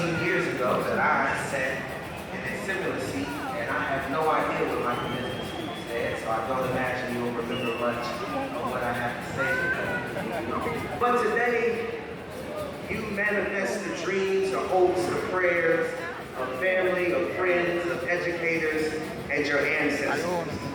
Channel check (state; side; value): identical; both; correlation 1.00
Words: years ago that I sat in a similar seat, and I have no idea what my commencement speech said, so I don't imagine you'll remember much of what I have to say. But today, you manifest the dreams, the hopes, the prayers of family, of friends, of educators, and your ancestors.